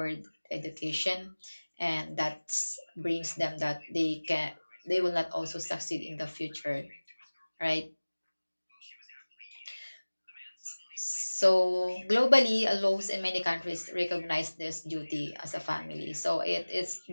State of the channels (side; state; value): both; inverted; correlation -1.00